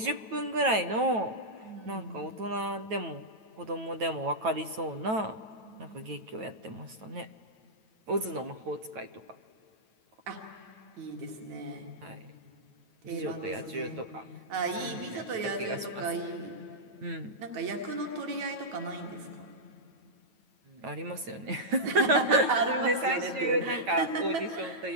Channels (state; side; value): late; left; 9.2 ms